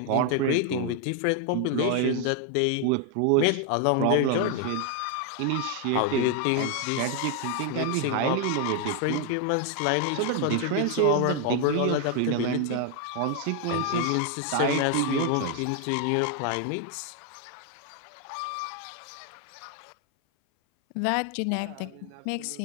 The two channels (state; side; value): different; both; correlation 0.01